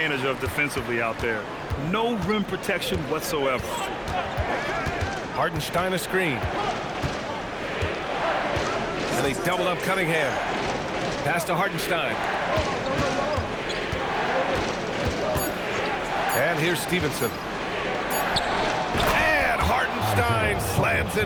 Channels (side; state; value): both; identical; correlation 1.00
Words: of defensively out there. No rim protection whatsoever. Hartenstein a screen. And he's doubled up Cunningham. Pass to Hartenstein. And here's Stevenson. And Hartenstein slams